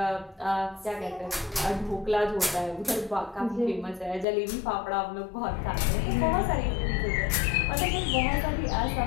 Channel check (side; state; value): right; drops out; at 4.2 s